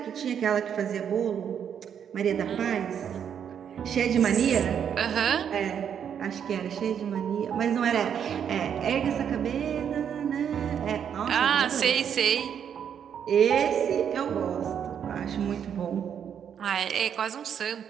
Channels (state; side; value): quieter; left; 8.3 dB